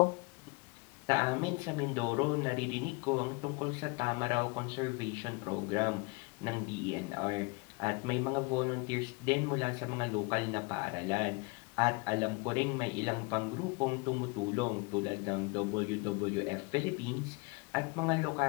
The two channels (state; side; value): quieter; right; 28.7 dB